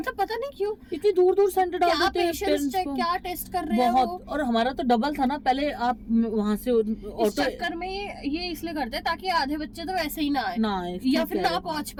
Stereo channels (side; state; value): both; identical; correlation 1.00